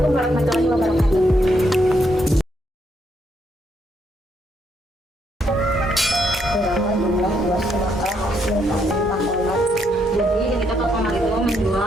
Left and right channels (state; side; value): normal; both; correlation 0.75